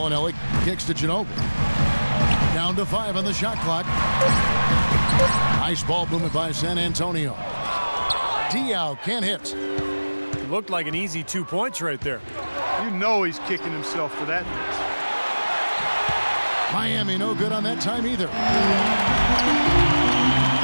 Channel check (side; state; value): both; inverted; correlation -1.00